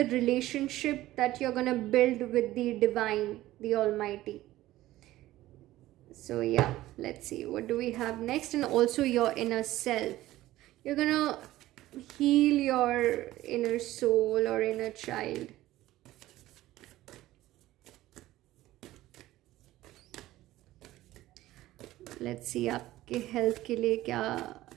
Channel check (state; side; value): quieter; left; 15.8 dB